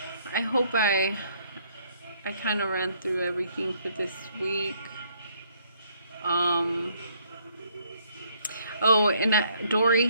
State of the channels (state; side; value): inverted; both; correlation -0.67